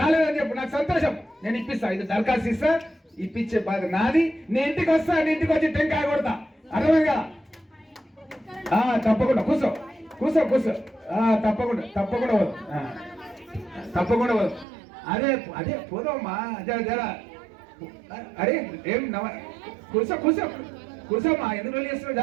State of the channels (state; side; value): drops out; left; at 14.7 s